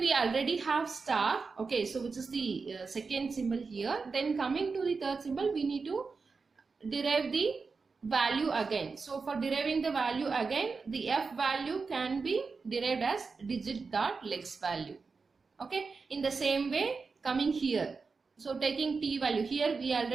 already have star, okay, so which is the second symbol here. Then coming to the third symbol, we need to derive the value again. So for deriving the value again, the F value can be derived as digit dot lex value, okay. In the same way, coming here, so taking t value, here we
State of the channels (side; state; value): left; quieter; 4.6 dB